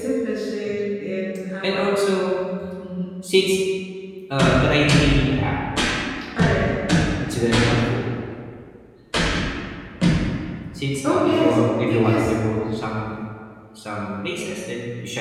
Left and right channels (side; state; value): both; identical; correlation 1.00